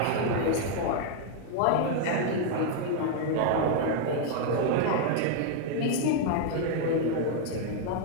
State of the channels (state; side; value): different; both; correlation 0.00